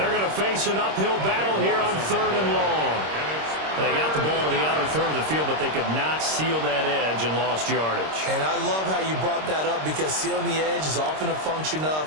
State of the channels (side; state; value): left; late; 26 ms